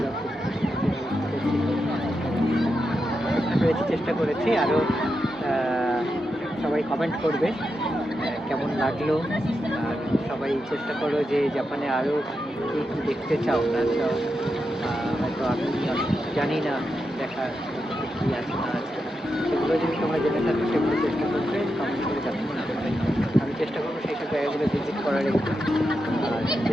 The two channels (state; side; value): normal; both; correlation 0.87